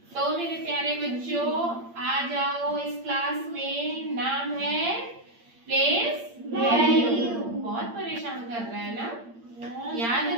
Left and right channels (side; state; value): left; late; 8.7 ms